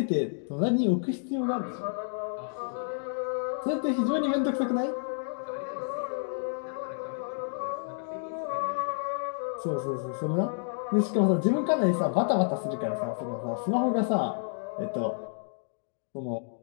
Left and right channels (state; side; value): silent; right; digital silence